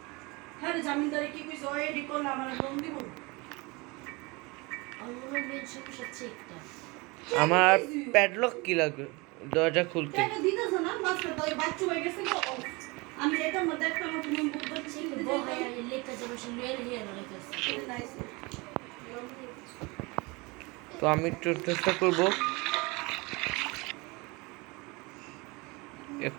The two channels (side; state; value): left; quieter; 25.9 dB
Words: আমার প্যাডলক কি লাগবে দরজা খুলতে? তো আমি একটু চেষ্টা করবো